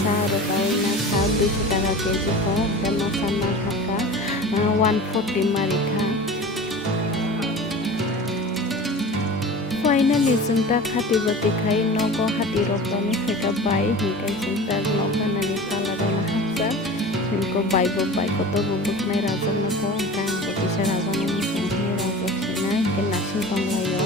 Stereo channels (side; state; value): both; normal; correlation 0.36